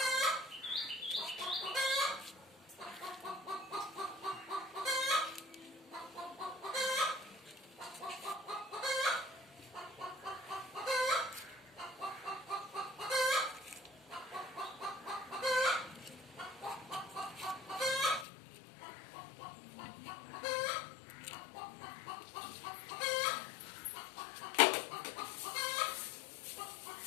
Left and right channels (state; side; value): drops out; right; at 18.2 s